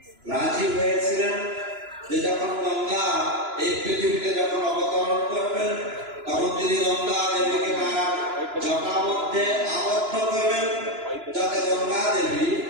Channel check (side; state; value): left; late; 2.9 ms